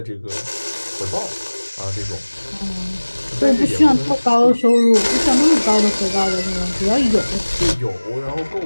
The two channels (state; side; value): inverted; both; correlation -1.00